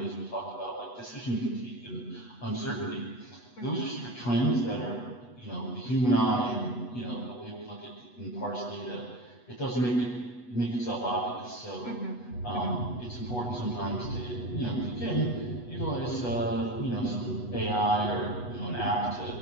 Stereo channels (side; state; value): right; late; 8.2 ms